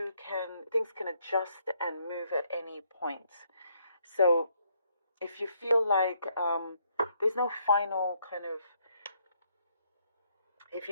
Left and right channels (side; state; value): both; inverted; correlation -0.72